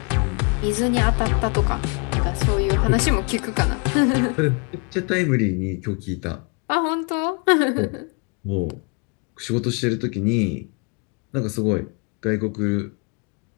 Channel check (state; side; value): quieter; right; 34.3 dB